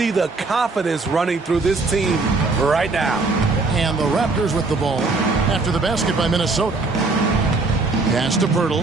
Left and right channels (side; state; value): left; quieter; 3.6 dB